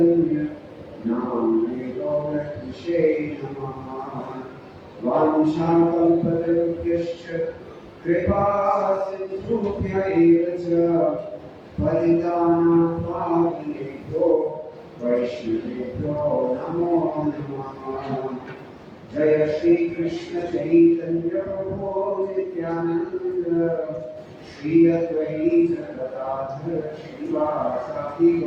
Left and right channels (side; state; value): both; identical; correlation 1.00